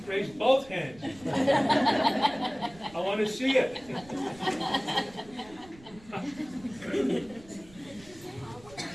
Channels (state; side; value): noise; right; rumble, 22 dB below the sound